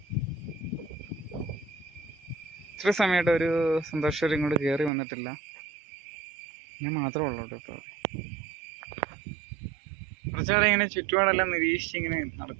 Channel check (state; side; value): drops out; left; at 4.9 s